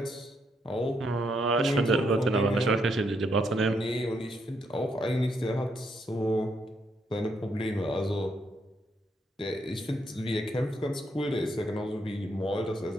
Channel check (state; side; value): normal; both; correlation 0.76